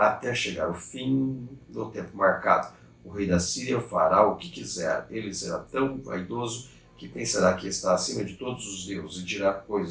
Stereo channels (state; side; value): identical; both; correlation 1.00